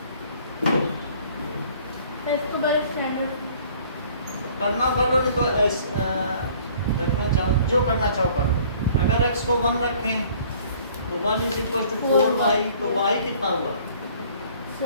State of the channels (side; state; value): both; inverted; correlation -0.55